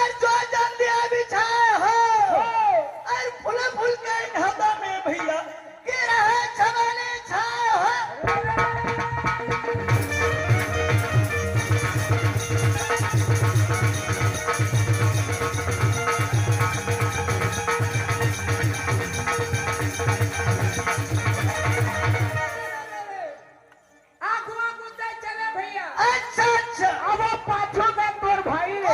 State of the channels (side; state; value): both; identical; correlation 1.00